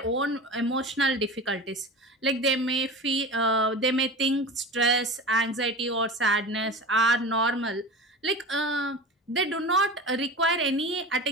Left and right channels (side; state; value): both; normal; correlation 0.32